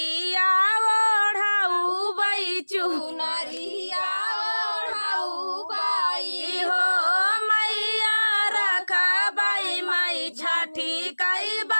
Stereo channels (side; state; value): both; inverted; correlation -1.00